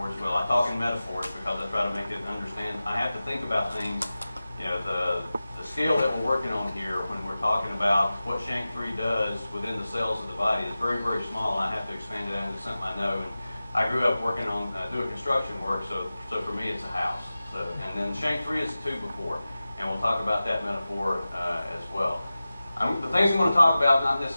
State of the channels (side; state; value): both; inverted; correlation -0.96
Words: as well. I talk in metaphors because I try to make it understand. I have to think about things, the scale that we're working on here when we're talking about what SHANK3 does within the cells of the body is very, very small, and I have to expand it out into something I know. And I grew up working on doing construction work, so for me it's a house. And then SHANK3 is a 2 and we'll talk about that metaphor as well. The things I'm going to talk about, not